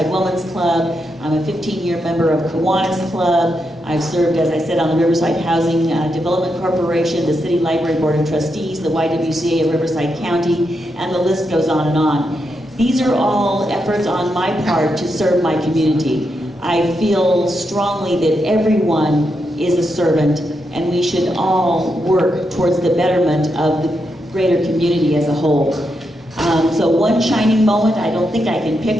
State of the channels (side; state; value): both; normal; correlation 0.83